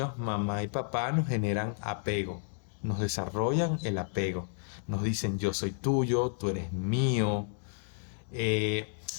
mamá y papá nos generan apego, nos desarrollan el apego. Nos dicen, yo soy tuyo, tú eres mío,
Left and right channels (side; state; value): right; silent; 57 dB below the other